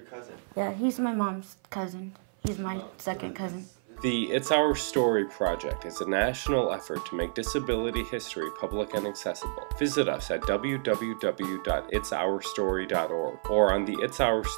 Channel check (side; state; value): left; silent; 56 dB below the other